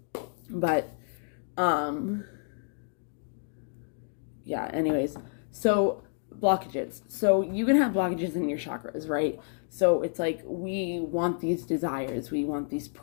But, yeah, anyways, so blockages. So you can have blockages in your chakras, right? So it's like we want these desires, we want these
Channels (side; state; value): right; silent; 58 dB below the other